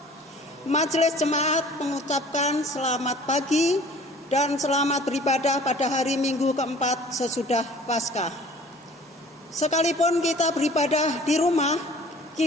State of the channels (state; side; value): normal; both; correlation 0.49